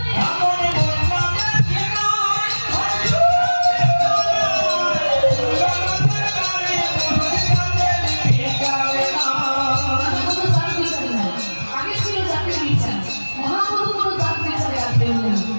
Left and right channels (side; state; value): both; inverted; correlation -1.00